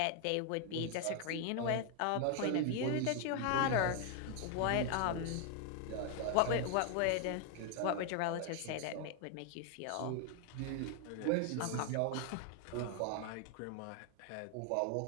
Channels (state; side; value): different; both; correlation 0.00